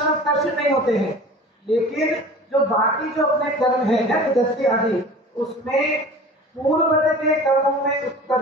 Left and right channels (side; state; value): both; normal; correlation 0.40